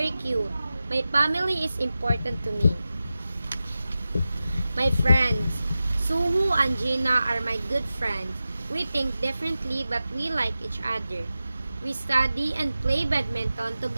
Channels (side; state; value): both; inverted; correlation -0.94